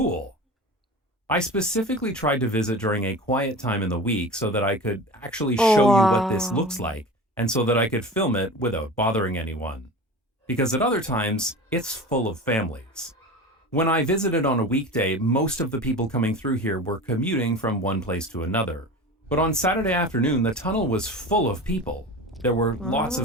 I specifically tried to visit during a quiet time in the week so that I could actually Oh, show you what this wow. looks like and so that I could film it without bothering anyone. Because at other times, it's full of families. When I visited on a weekday, most of the people coming through here were commuting from one place to another. But on Saturday afternoon, the tunnel was full of people. There were lots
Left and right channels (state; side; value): normal; both; correlation 0.33